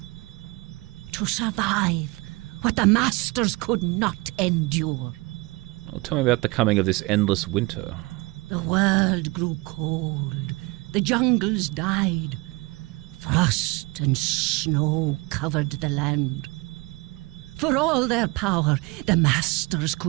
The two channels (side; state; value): left; quieter; 24.7 dB